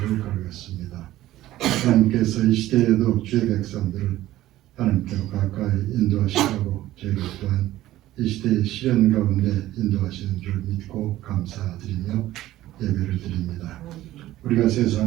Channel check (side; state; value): left; quieter; 15.0 dB